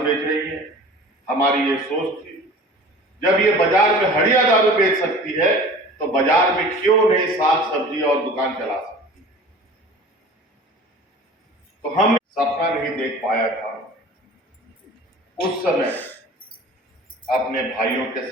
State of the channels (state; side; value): normal; both; correlation 0.42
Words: रही हैं, हमारी ये सोच थी, जब ये बाजार में हड़िया दारू बेच सकती है तो बाजार में क्यों नहीं साग सब्जी और दुकान चला सकती। तो हम सपना नहीं देख पाया था उस समय अपने भाइयों के